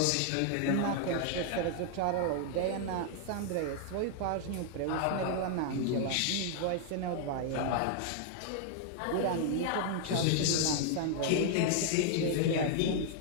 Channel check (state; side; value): different; both; correlation 0.00